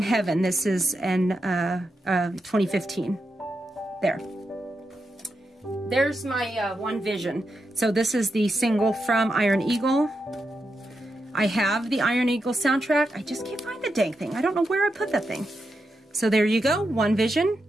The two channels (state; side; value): normal; both; correlation 0.86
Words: Heaven. This is in 2015. There's my One Vision. So this is the single from Iron Eagle. I have the Iron Eagle soundtrack. I just can't find the dang thing. I don't know where I put that thing. So there you go, One Vision